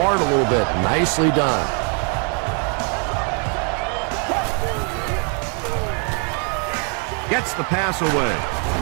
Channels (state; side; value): quieter; left; 39.5 dB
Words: a little bit. Nicely done. Gets the pass away.